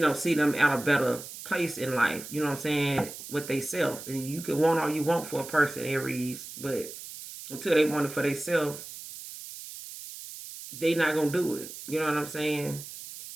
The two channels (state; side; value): noise; right; hiss, 12 dB below the sound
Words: see them at a better place in life. You know what I'm saying? With they self. And you can want all you want for a person, Aries, but until they want it for themselves, they not gonna do it. You know what I'm saying?